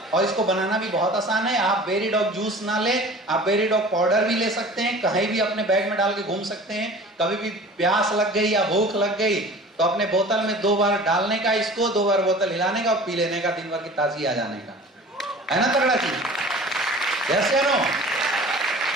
और इसको बनाना भी बहुत आसान है। आप बेरी डॉग जूस ना ले, आप बेरी डॉग पाउडर भी ले सकते हैं, कहीं भी अपने बैग में डाल के घूम सकते हैं। कभी भी प्यास लग गई या भूख लग गई तो अपने बोतल में 2 बार डालने का, इसको 2 बार बोतल हिलाने का और पी लेने का, दिन भर की ताजगी आ जाने का, है ना? तगड़ा चीज, यस या नो?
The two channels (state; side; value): normal; both; correlation 0.43